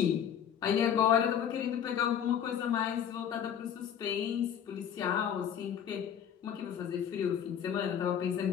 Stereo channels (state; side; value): quieter; right; 8.8 dB